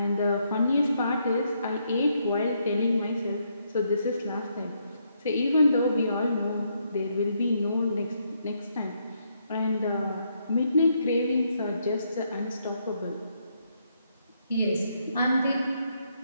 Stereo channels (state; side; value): inverted; both; correlation -0.76